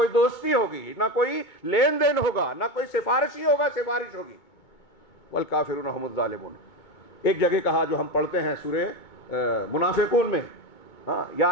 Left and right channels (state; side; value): late; right; 2.2 ms